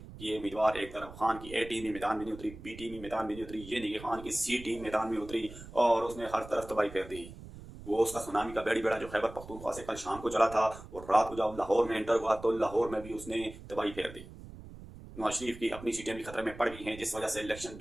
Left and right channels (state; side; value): noise; right; rumble, 15 dB below the sound